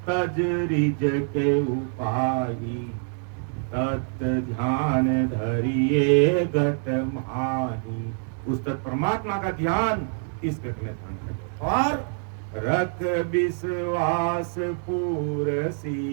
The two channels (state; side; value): silent; left; 58 dB below the other